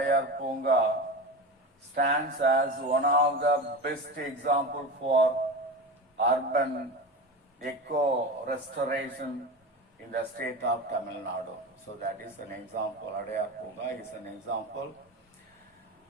stands as one of the best examples for urban eco restoration in the state of Tamil Nadu. So that is an example. Adayar Punga is an example.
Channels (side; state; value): both; normal; correlation 0.26